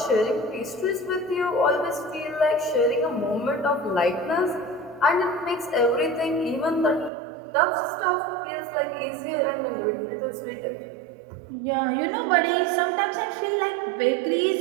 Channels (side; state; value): left; drops out; at 7.1 s